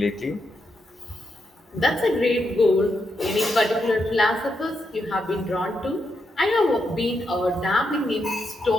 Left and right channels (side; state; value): both; normal; correlation 0.83